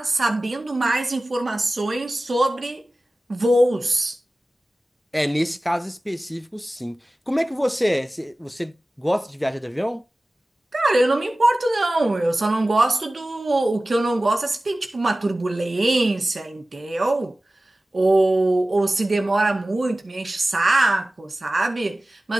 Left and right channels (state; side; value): normal; both; correlation 0.97